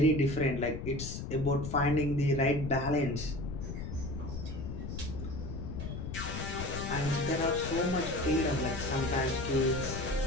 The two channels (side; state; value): left; noise; rumble, 6 dB below the sound